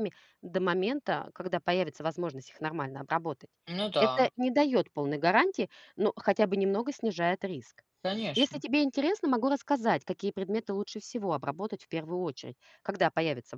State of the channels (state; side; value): identical; both; correlation 1.00